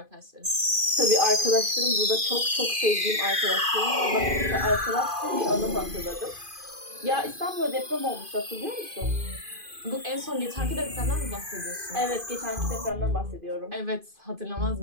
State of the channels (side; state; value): left; late; 2.5 ms